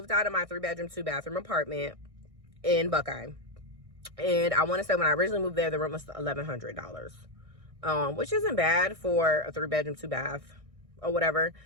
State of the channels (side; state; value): left; late; 1.6 ms